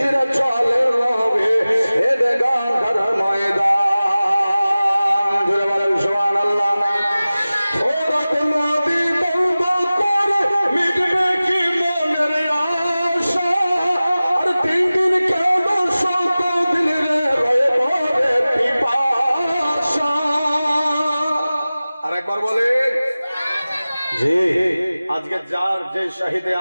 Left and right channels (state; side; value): inverted; both; correlation -0.97